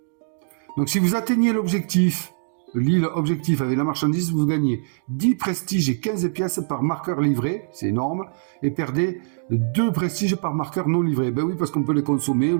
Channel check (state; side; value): silent; left; digital silence